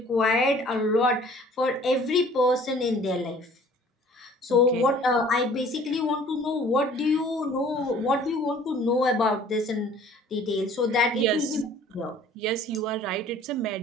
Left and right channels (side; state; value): both; normal; correlation 0.52